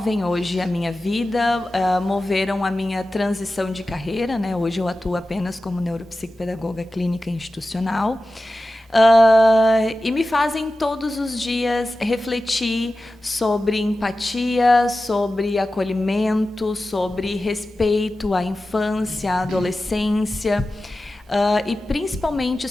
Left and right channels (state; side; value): normal; both; correlation 0.95